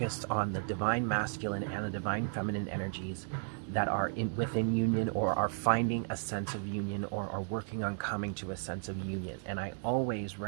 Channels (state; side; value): silent; left; 55 dB below the other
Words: on the divine masculine and the divine feminine energies that are within union, or are finding a sense of union, or are working on coming to a sense of union. And I always